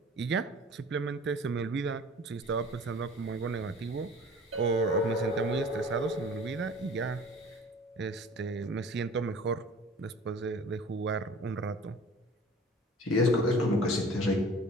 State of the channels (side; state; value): both; normal; correlation 0.45